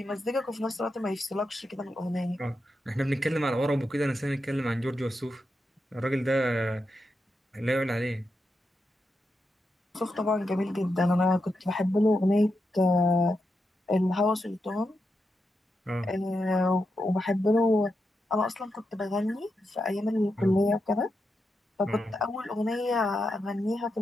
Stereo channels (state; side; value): normal; both; correlation 0.86